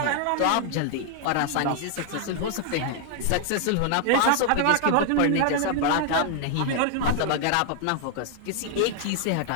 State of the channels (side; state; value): both; different; correlation 0.00